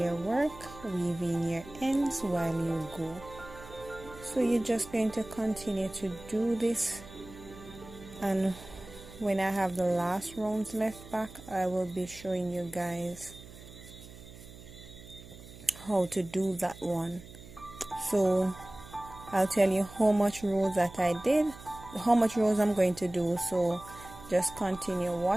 work, weave in your ends while you go. So you're just going to continue to do this, and when I have the last rounds left back, I will be showing you guys how to do that one. So I'll tell you how much rows that I did, how much rows I'm going to do. So just continue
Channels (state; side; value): noise; right; hum, 17 dB below the sound